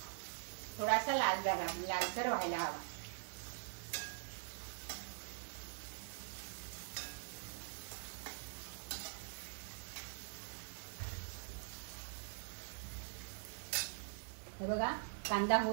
थोडासा लालसर व्हायला हवा. हे बघा, कांदा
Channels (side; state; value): left; silent; digital silence